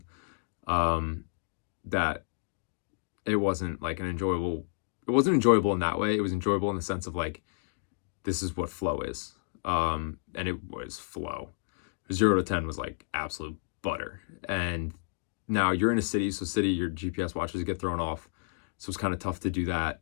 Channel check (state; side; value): silent; right; digital silence